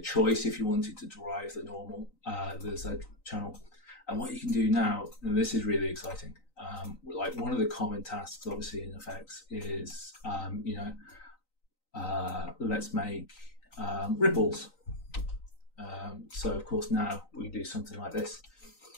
if you wanted to derive the normal, the z channel. And what you can do now, and this is really exciting, like one of the common tasks obviously in effects is, you know, let's make ripples. So of course now we do something like this.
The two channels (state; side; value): late; right; 3.9 ms